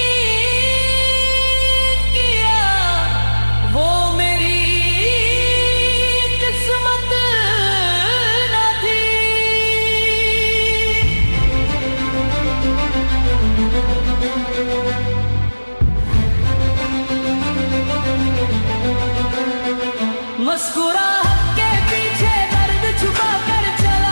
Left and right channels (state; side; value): inverted; both; correlation -1.00